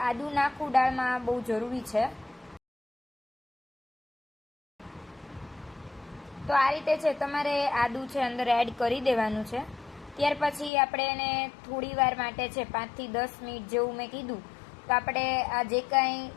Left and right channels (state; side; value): drops out; right; at 10.7 s